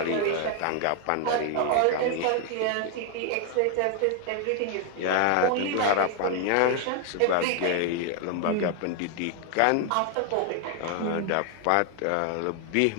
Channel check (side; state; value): both; different; correlation 0.00